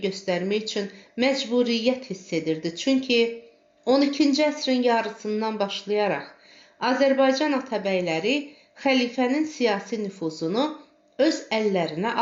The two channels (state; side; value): identical; both; correlation 1.00